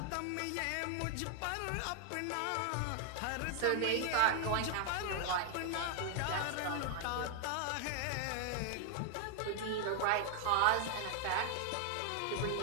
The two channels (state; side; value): different; both; correlation 0.00